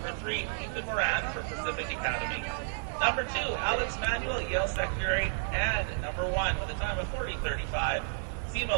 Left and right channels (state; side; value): silent; left; digital silence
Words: 3, Ethan Moran from Pacific Academy. Number 2, Alex Manuel, Yale Secondary. And number 1, with a time of 40:35, Simo